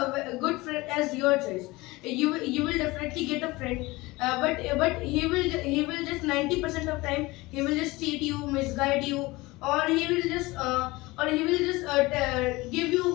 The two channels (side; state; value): right; quieter; 21.5 dB